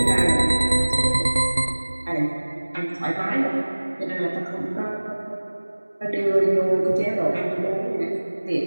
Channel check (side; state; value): both; inverted; correlation -1.00